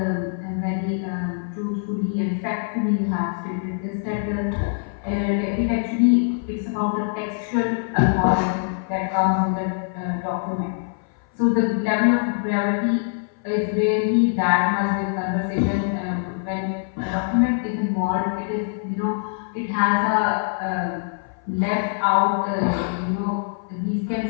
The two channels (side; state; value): right; silent; 58 dB below the other